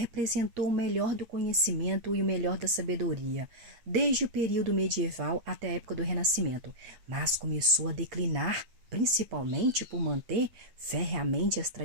o melhor do conhecimento e o melhor da sabedoria, desde o período medieval até a época do Renascimento, mas começou a declinar, principalmente por manter ferreamente as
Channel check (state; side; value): late; left; 8.4 ms